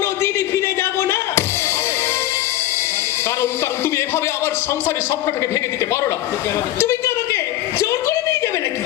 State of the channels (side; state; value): right; quieter; 14.2 dB